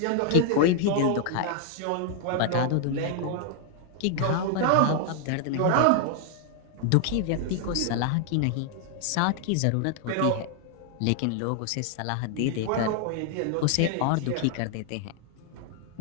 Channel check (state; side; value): different; both; correlation 0.00